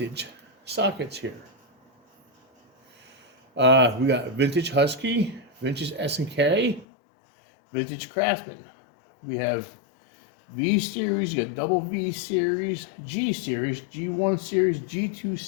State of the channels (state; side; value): drops out; right; at 6.9 s